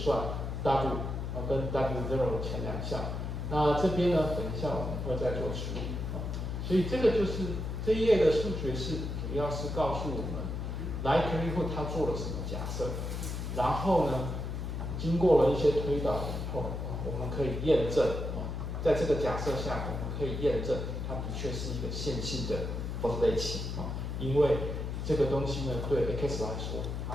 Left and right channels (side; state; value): left; noise; hum, 4 dB below the sound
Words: W 跟 W0 前两项。那这边呢，等一下我们会再做处理所以这个就是这一页的数学式，主要是告诉我们 likelihood 它做了什么假设，然后呢，经过了一些推导以后我们可以验证在这个假设下，我们可以验证它的确是一个线性的 probability 因为这个东西呢，对 x 来说